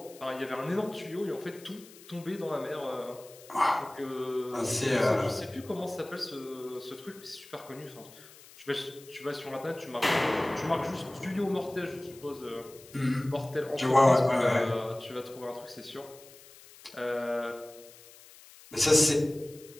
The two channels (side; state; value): left; noise; hiss, 21 dB below the sound